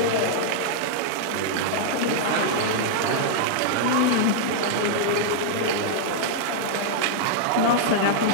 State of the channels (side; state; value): both; different; correlation -0.01